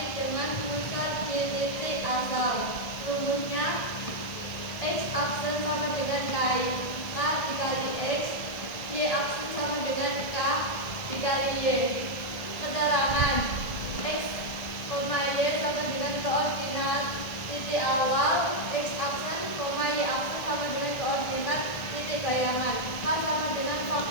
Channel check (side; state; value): right; late; 1.6 ms